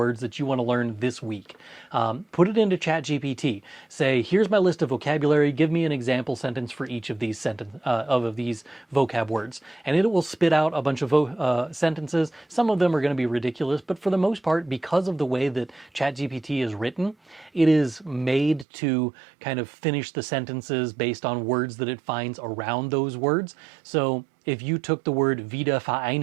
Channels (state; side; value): drops out; left; at 18.7 s